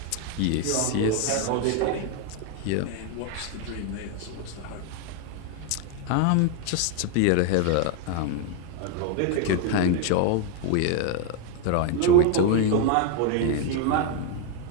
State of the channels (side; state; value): both; different; correlation 0.01